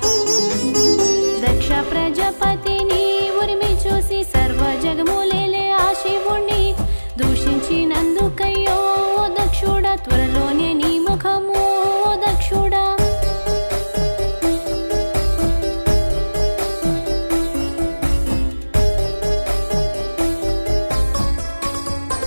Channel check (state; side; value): inverted; both; correlation -1.00